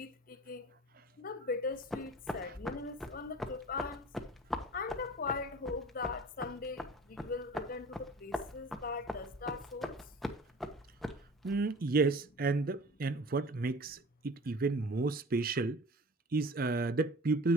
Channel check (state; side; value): normal; both; correlation 0.42